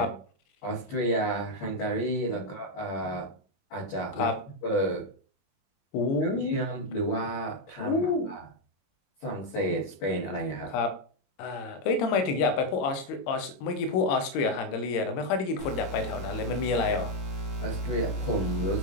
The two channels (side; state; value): right; late; 22 ms